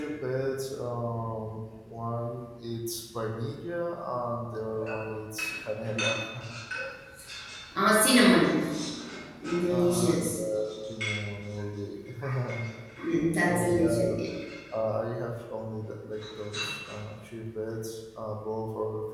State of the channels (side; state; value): both; identical; correlation 1.00